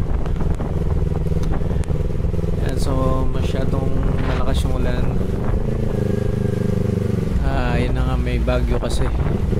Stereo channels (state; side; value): identical; both; correlation 1.00